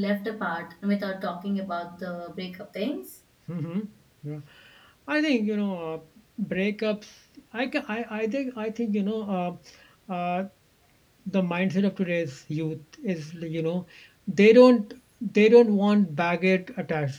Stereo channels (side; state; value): both; identical; correlation 1.00